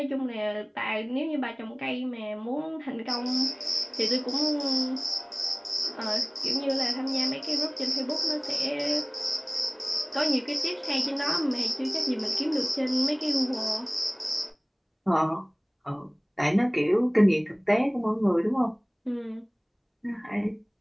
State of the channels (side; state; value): both; identical; correlation 1.00